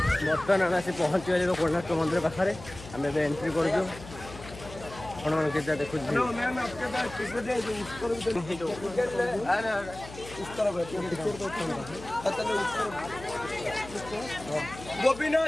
बर्तमान आम आसी पहुँची गले कोणार्क मंदिर पाखे आम एंट्री कर देखो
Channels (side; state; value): left; noise; hum, 15 dB below the sound